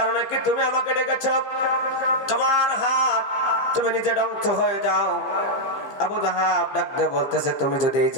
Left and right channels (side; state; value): right; late; 15 ms